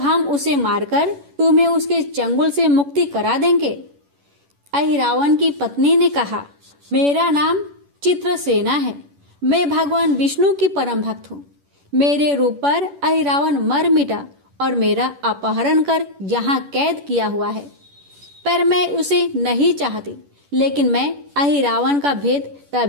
उसे मारकर तुम्हें उसके चंगुल से मुक्ति करा देंगे। अहिरावण की पत्नी ने कहा, मेरा नाम चित्रसेना है, मैं भगवान विष्णु की परम भक्त हूँ। मेरे रूप पर अहिरावण मर मिटा और मेरा अपहरण कर यहाँ कैद किया हुआ है, पर मैं उसे नहीं चाहती। लेकिन मैं अहिरावण का भेद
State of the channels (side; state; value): left; late; 11 ms